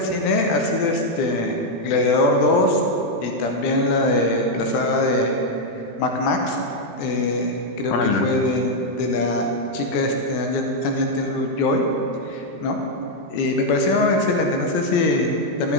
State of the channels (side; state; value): right; late; 18 ms